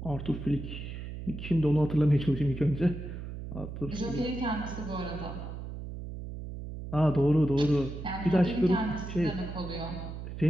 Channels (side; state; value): right; noise; hum, 8 dB below the sound